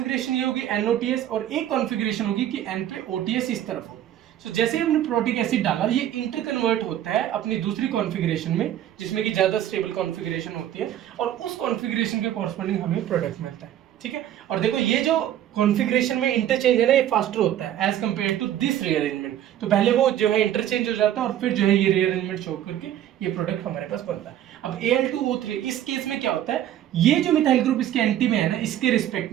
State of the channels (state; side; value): quieter; left; 11.5 dB